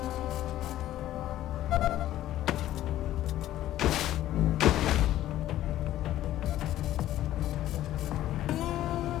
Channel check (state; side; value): quieter; right; 13.5 dB